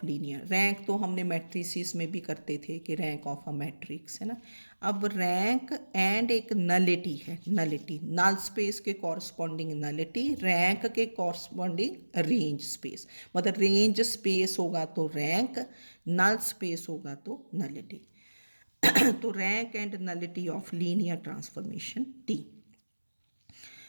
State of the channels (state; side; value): inverted; both; correlation -1.00